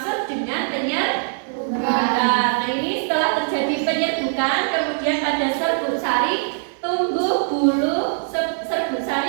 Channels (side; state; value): left; silent; digital silence